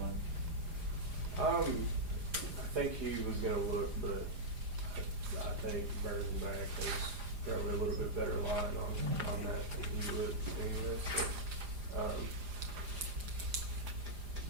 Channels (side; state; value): left; late; 4.9 ms